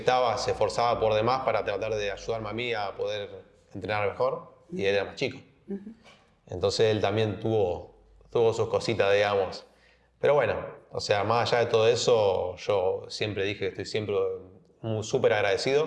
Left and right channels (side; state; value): both; identical; correlation 1.00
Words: se esforzaba por demás para tratar de ayudarme a mí a poder entrenar mejor y él era más chico. Entonces él también tuvo sus cositas, digamos. Pero bueno, o sea, más allá de todo eso, yo siempre dije que estoy siempre súper